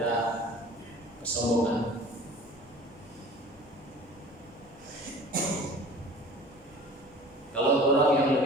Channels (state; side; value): normal; both; correlation 0.43